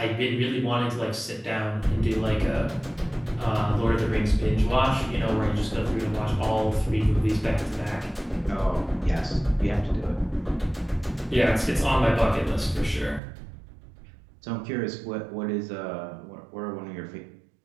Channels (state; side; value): drops out; left; at 13.2 s